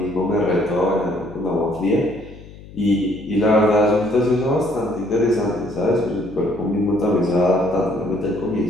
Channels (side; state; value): left; noise; hum, 18 dB below the sound